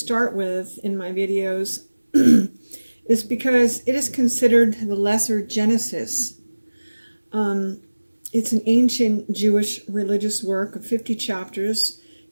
with in my videos is because it is considered the lesser Genesis. It's an ancient Jewish religious work of 50 chapters,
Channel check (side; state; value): both; inverted; correlation -1.00